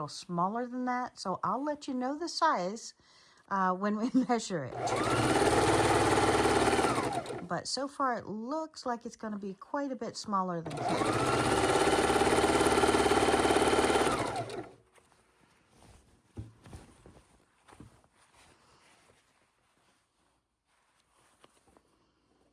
smaller than that. So I'll let you know the size when we measure it. But so far, it looks like it's going to be quite a bit smaller than king.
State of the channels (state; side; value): identical; both; correlation 1.00